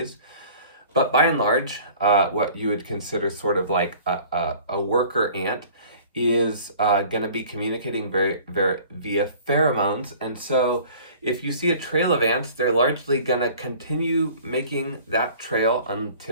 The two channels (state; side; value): inverted; both; correlation -0.48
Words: But by and large, what you would consider sort of like a worker ant is going to be communicating very, very via pheromones. And so if you see a trail of ants, they're largely going to continue making that trail